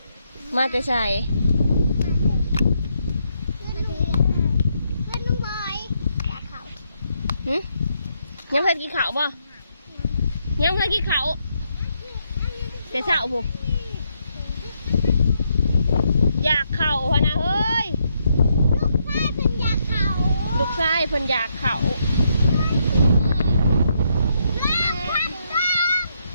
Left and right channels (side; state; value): both; inverted; correlation -0.77